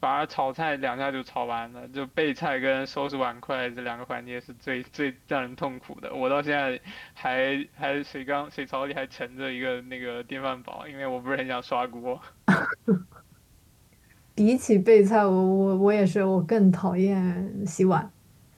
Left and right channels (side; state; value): both; identical; correlation 1.00